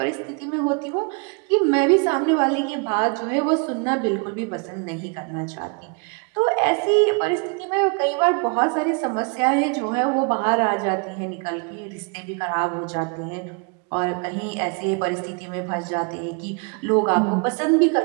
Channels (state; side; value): quieter; left; 35.5 dB